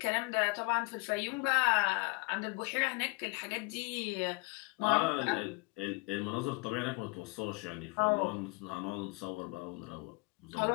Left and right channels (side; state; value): right; quieter; 28.0 dB